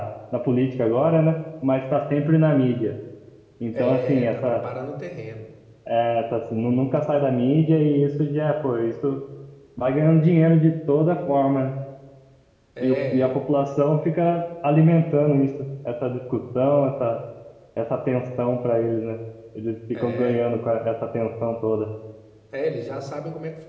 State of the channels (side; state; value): both; identical; correlation 1.00